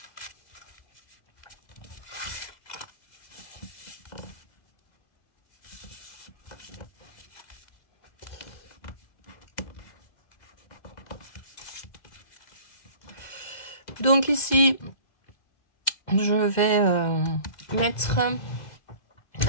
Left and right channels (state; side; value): late; right; 2.0 ms